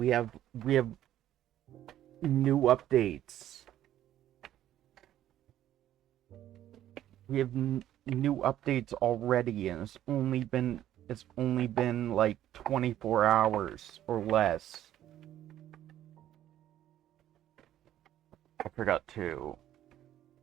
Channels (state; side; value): quieter; left; 12.2 dB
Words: have new updates. We have new updates already and it's only been like 24 hours or less. I forgot to